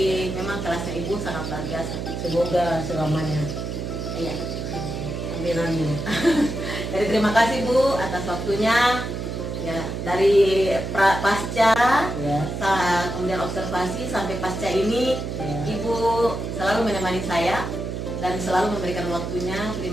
memang kelasnya Ibu sangat luar biasa. Semoga selamanya. Iya. Amin amin. Jadi terima kasih Bu atas waktunya. Ya, dari pasca Ya. kemudian observasi sampai pasca ini Ya. Ibu selalu menemani saya dan selalu memberikan waktunya.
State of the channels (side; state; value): right; noise; hum, 5 dB below the sound